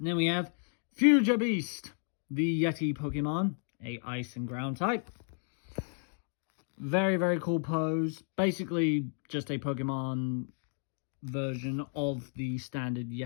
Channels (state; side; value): silent; right; 56 dB below the other